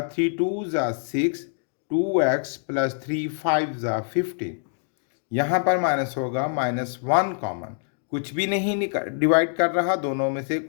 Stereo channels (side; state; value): right; silent; digital silence